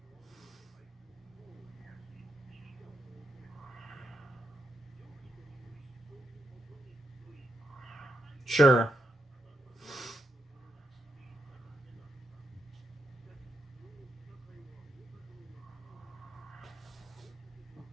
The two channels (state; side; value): normal; both; correlation 0.82